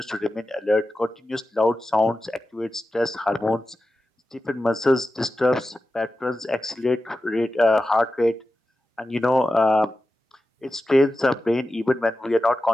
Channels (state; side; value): normal; both; correlation 0.93